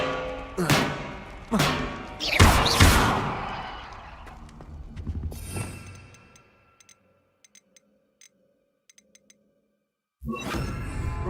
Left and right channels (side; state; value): both; identical; correlation 1.00